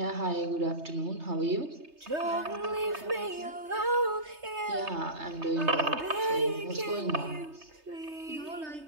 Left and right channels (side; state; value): left; late; 3.3 ms